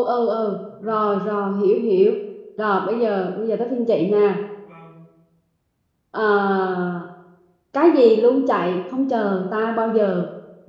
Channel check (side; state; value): both; identical; correlation 1.00